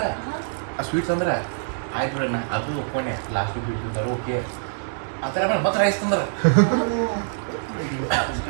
ಆ ಸ್ವೀಟ್ಸ್ ಅಂದ್ರೆ ಆಯ್ತು ಬಿಡೋಣ ಅದು ಒಪ್ಕೊಂಡೆ ಲಾಸ್ಟ್ ಸ್ವೀಟ್ ತಿಂತಾರೆ ಓಕೆ ಆ ಥರ ಆಮೇಲೆ ಮತ್ತೆ ರೈಸ್ ತಂದ್ರೆ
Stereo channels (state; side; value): silent; left; digital silence